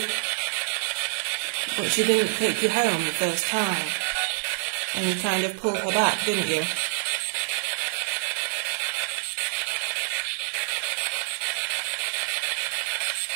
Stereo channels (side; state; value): left; silent; digital silence